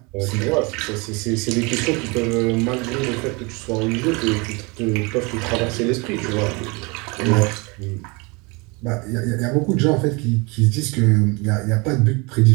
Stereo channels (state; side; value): quieter; left; 27.9 dB